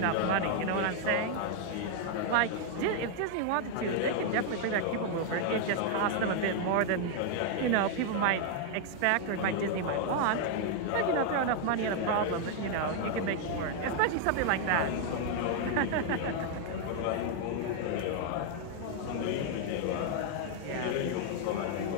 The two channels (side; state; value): both; different; correlation 0.00